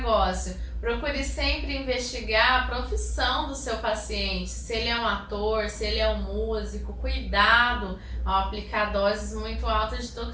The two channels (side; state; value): both; identical; correlation 1.00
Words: Procure sempre investigar a profissão do seu paciente, se ele é um ator, se ele é um músico. Cuidado ao aplicar doses muito altas de